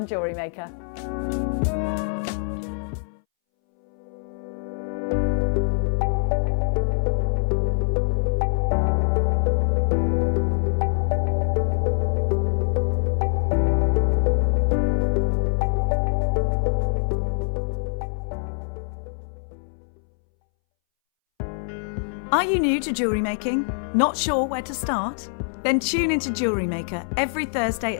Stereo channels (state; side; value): silent; right; 63 dB below the other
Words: Jewellery Maker. Are you new to jewellery making? Not sure where to start? Then tune into Jewellery Maker every Thursday